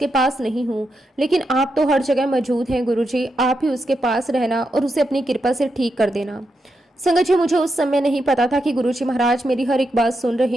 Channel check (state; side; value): normal; both; correlation 0.85